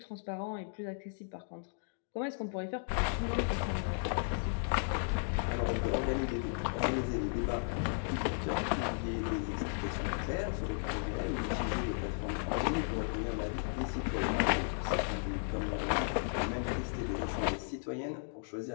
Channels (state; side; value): silent; right; digital silence